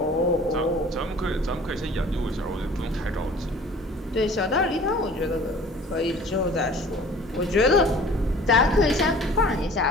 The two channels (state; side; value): normal; both; correlation 0.48